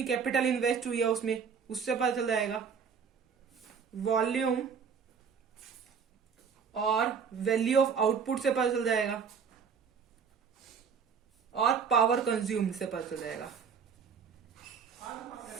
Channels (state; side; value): quieter; left; 6.4 dB